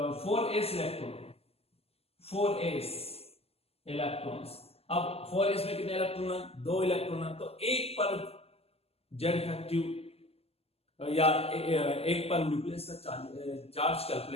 इलेक्ट्रॉन्स। अब 4s में कितने इलेक्ट्रॉन है, 2 इलेक्ट्रॉन है, तो एक पर जेड इफेक्टिव या एक पर न्यूक्लियस का चार्ज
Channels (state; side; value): late; right; 0.29 ms